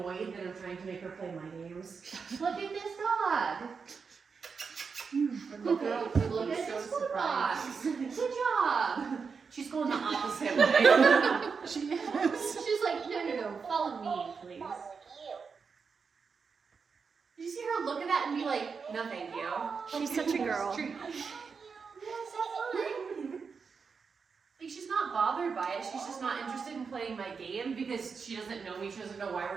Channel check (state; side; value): quieter; left; 5.5 dB